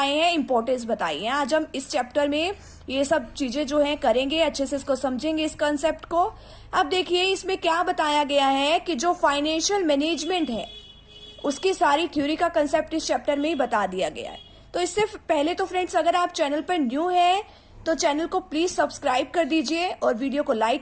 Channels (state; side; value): identical; both; correlation 1.00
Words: हैं, इंपॉर्टेंस बताई है। आज हम इस चैप्टर में ये सब चीजें जो है करेंगे, अच्छे से इसको समझेंगे इस कंसेप्ट को। अब देखिए इसमें क्या बताया गया है कि जो फाइनेंशियल मैनेजमेंट है उसकी सारी थ्योरी का कंसेप्ट इस चैप्टर में ही बता दिया गया है। तो इससे पहले तो फ्रेंड्स, अगर आप चैनल पर न्यू है तो चैनल को प्लीज सब्सक्राइब कर दीजिए और वीडियो को